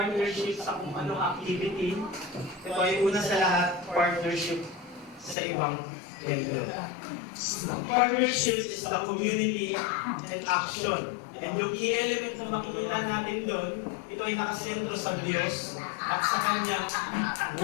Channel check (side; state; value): right; drops out; at 5.4 s